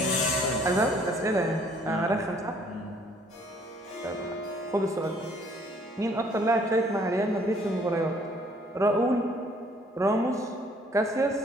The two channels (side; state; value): both; normal; correlation 0.61